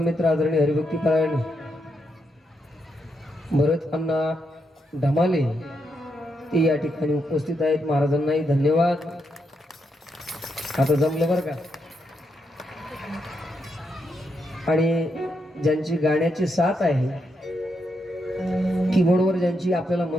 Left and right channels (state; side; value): normal; both; correlation 0.82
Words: आदरणीय हरिभक्ती परायण भरत अण्णा ढमाले ते या ठिकाणी उपस्थित आहेत. महाराजांनाही धन्यवाद. आता जमलं बरं का. आणि ज्यांची गाण्याची साथ आहे, कीबोर्डवर ज्यांची आपल्याला